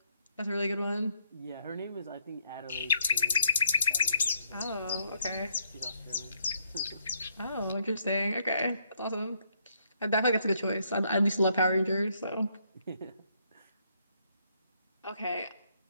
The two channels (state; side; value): inverted; both; correlation -0.71